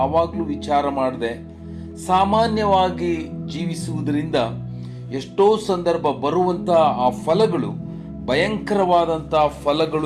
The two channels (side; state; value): both; identical; correlation 1.00